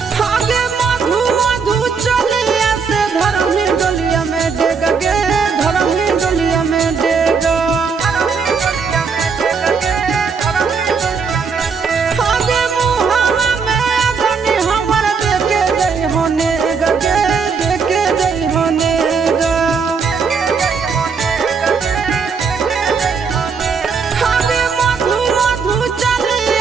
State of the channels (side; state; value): left; quieter; 5.6 dB